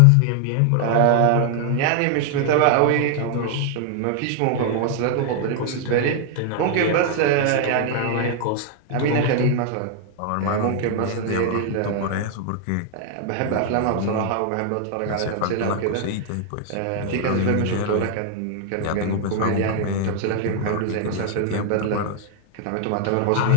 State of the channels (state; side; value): different; both; correlation 0.00